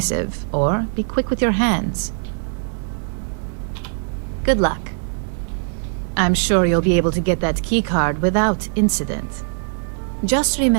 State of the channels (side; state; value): left; silent; digital silence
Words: or be quick with your hands. Good luck. I'm sure you'll be able to get that keycard without incident. Just